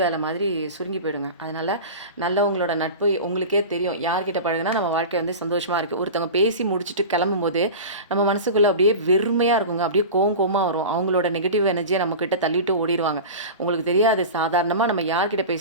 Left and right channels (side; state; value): both; inverted; correlation -0.30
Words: மாதிரி சுருங்கி போயிடுங்க. அதனால் நல்லவங்களோட நட்பு உங்களுக்கே தெரியும். யார்கிட்ட பழகுனா நம்ம வாழ்க்கை வந்து சந்தோஷமாக இருக்குது. ஒருத்தவங்க பேசி முடிச்சுட்டு கிளம்பும்போது நம்ம மனசுக்குள்ளே அப்படியே வெறுமையாக இருக்குங்க. அப்படியே கோவமாக வரும். அவங்களோட நெகட்டிவ் எனர்ஜியை நம்மக்கிட்ட தள்ளிட்டு ஓடிடுவாங்க. உங்களுக்கு தெரியாது, சாதாரணமாக நம்ம யார்கிட்ட